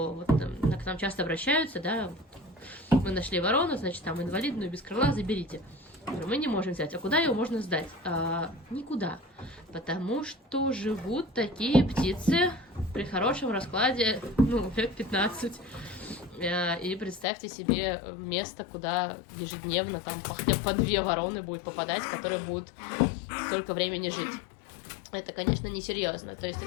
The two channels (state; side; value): drops out; right; at 17.2 s